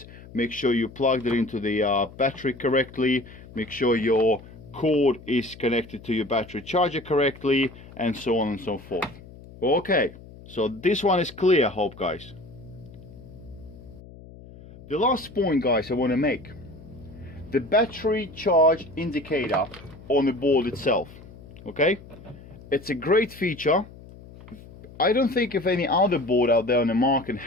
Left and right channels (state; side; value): noise; left; hum, 19 dB below the sound